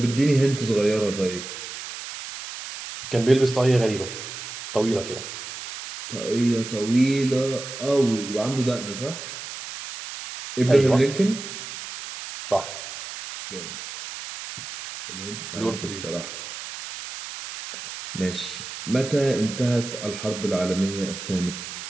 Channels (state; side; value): noise; right; hiss, 10 dB below the sound